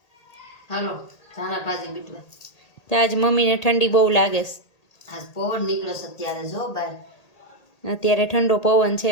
હાલો ધાણા ભાજી બીટવા। તો આજ મમ્મીને ઠંડી બહુ લાગે છે, આજ પવન નીકળ્યો છે અત્યારે જો બહાર। અત્યારે ઠંડો પવન છે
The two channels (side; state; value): right; late; 1.8 ms